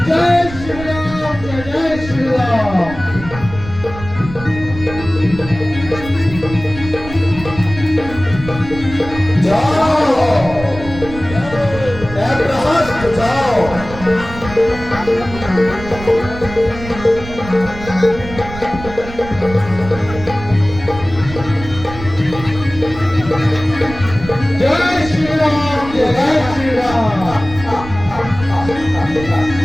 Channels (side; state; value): right; noise; rumble, 12 dB below the sound